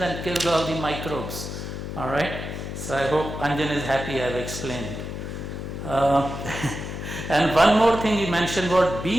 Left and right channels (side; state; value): left; noise; hum, 7 dB below the sound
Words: and kills all the microbes. All right? So I hope Anjan is happy I've explained. And one more thing he mentioned was